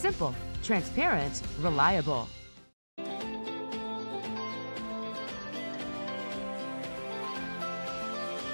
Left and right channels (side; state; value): both; inverted; correlation -1.00